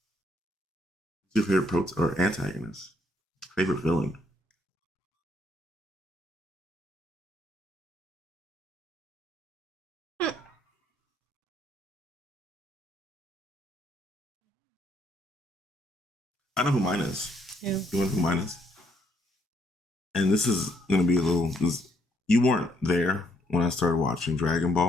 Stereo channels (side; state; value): both; normal; correlation 0.71